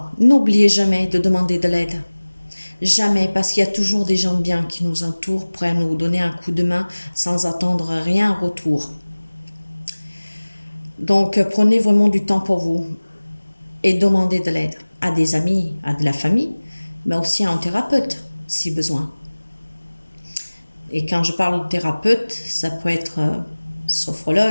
N'oubliez jamais de demander de l'aide. Jamais, parce qu'il y a toujours des gens bien qui nous entourent, prêts à nous donner un coup de main sans attendre rien en retour. Donc, prenez vraiment du temps pour vous et demandez de l'aide à des amis, à de la famille, mais aussi à un thérapeute, si besoin. Et quand je parle de thérapeute, ça peut être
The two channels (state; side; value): inverted; both; correlation -1.00